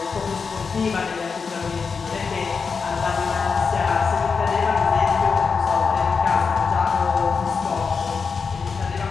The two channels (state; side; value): quieter; right; 5.3 dB